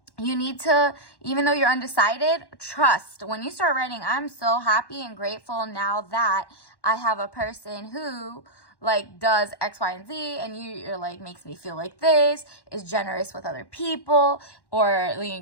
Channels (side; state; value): right; late; 1.1 ms